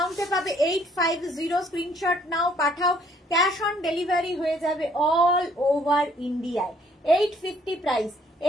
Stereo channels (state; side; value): normal; both; correlation 0.63